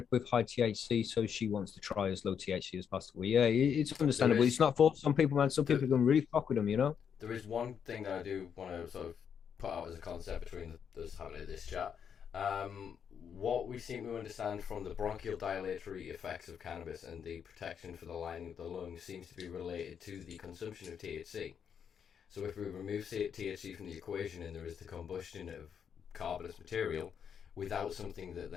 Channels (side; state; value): right; quieter; 7.6 dB